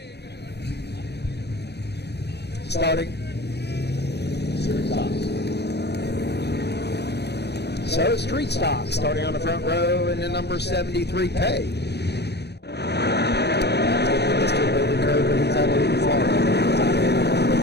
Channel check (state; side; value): late; right; 0.48 ms